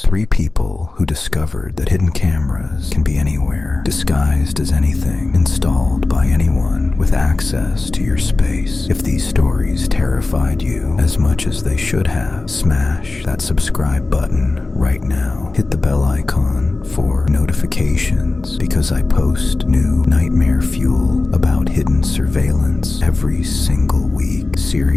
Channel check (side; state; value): right; quieter; 3.4 dB